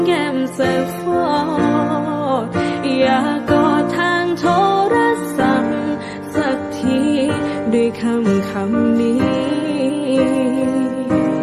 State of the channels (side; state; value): both; identical; correlation 1.00